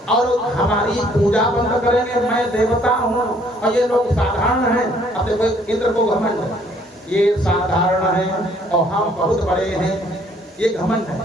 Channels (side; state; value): both; normal; correlation 0.62